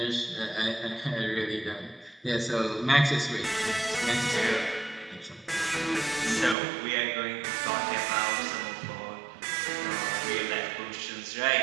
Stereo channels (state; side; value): drops out; left; at 6.6 s